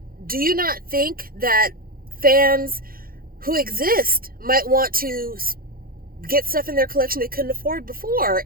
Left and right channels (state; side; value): late; left; 0.42 ms